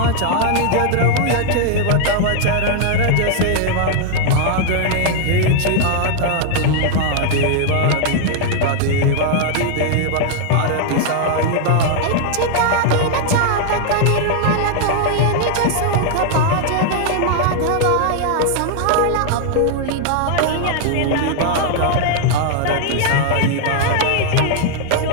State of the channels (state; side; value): different; both; correlation 0.00